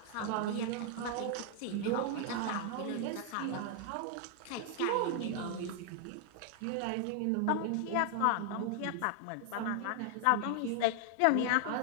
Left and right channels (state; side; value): different; both; correlation 0.00